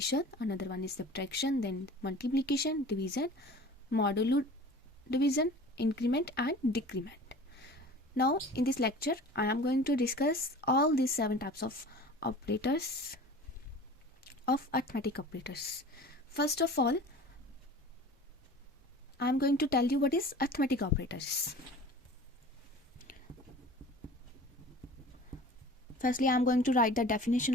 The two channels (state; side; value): normal; both; correlation 0.41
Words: another one is subtraction, then multiplication, division, modulo division, increment and decrement. Now in this lecture I am going to discuss all these 7 types of operators of arithmetic operators. First of all, I am going to tell you what is arithmetic operators. Firstly, I am going to write the definition